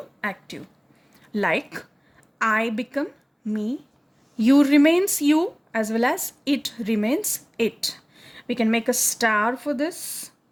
active. Like I become me, you remains you, as well as it remains it. We can make a star for this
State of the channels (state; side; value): identical; both; correlation 1.00